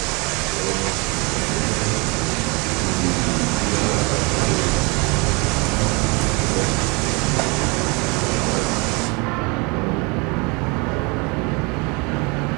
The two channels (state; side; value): quieter; left; 29.0 dB